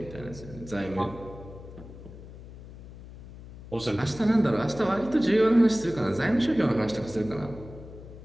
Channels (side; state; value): left; noise; hum, 16 dB below the sound